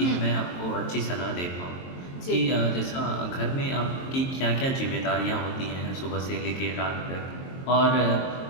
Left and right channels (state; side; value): late; right; 22 ms